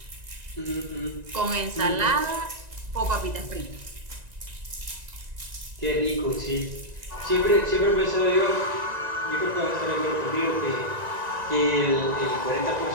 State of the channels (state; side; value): late; left; 1.9 ms